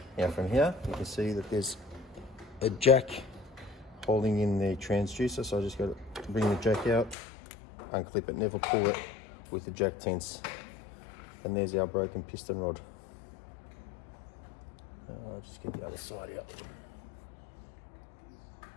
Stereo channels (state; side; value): drops out; right; at 7.2 s